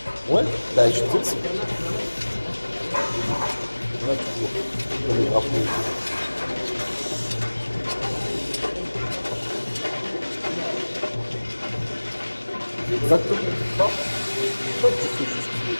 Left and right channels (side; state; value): both; inverted; correlation -1.00